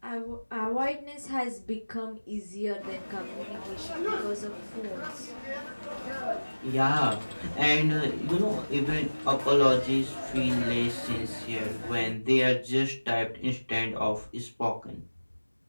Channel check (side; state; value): both; inverted; correlation -1.00